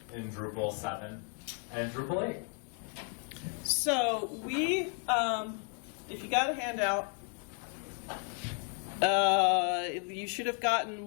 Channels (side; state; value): right; quieter; 38.5 dB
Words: in Drupal 7 and Drupal 8. So we, if you got a handout, you should have gotten